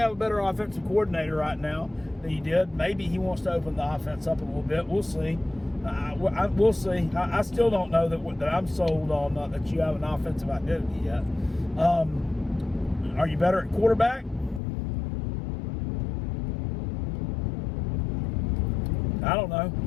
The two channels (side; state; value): right; drops out; at 14.6 s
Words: a better offensive coordinator right now than you did. Maybe he wants to open the offense up a little bit. We'll see. We'll see. I still don't know that I'm sold on that you have an offensive identity yet. Are you better at quarterback? I don't know.